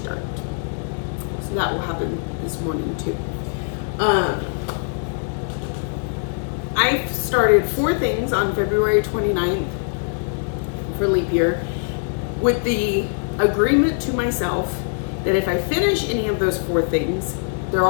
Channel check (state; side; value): silent; right; 64 dB below the other